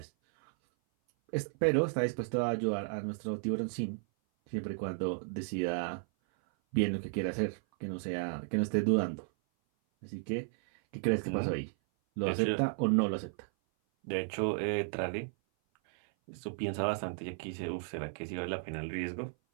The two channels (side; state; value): left; silent; 55 dB below the other